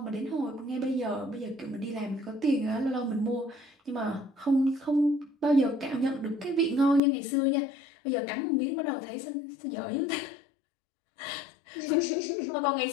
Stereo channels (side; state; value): right; drops out; at 7.0 s